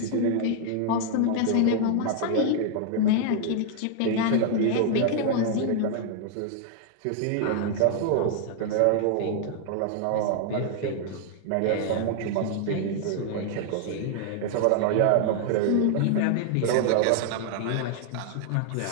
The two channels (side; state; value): both; different; correlation 0.00